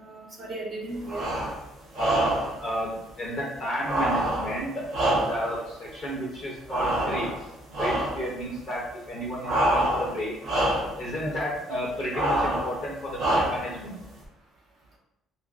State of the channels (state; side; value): normal; both; correlation 0.64